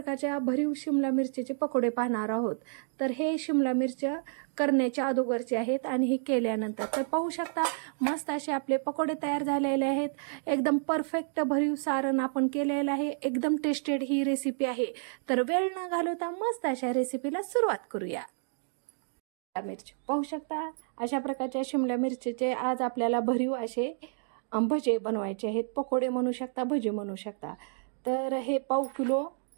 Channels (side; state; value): left; silent; digital silence